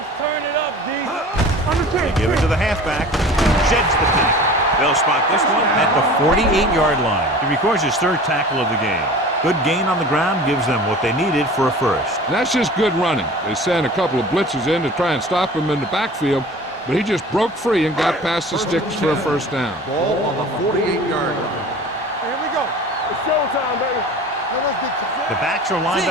turn it up, D. They give it to the halfback. Sheds the tackle. They'll spot this one at the 48-yard line. He records his third tackle of the game. Good gain on the ground gives them what they needed for a first. That's just good running. They sent a couple of blitzes in to try and stop him in the backfield, but he just broke free and got past the sticks for a first down. Ball on the 48-yard line. Here we go. It's showtime, baby. The backs are lined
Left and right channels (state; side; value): normal; both; correlation 0.41